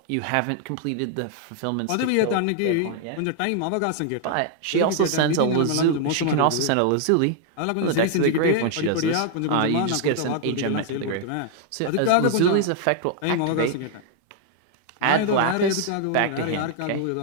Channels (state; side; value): different; both; correlation 0.00